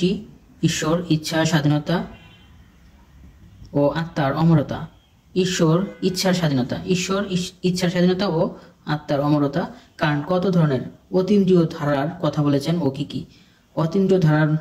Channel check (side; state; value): both; identical; correlation 1.00